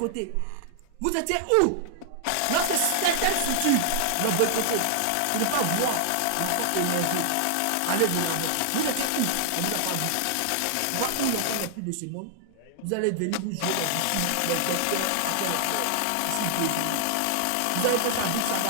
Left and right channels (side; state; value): both; different; correlation -0.01